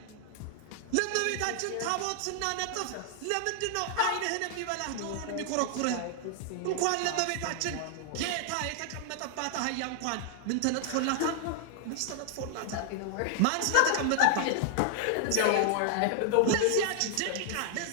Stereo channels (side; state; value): both; different; correlation 0.00